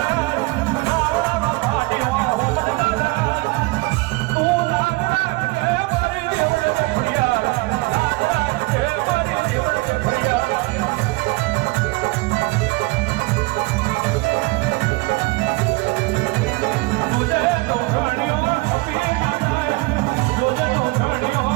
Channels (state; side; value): quieter; left; 23.8 dB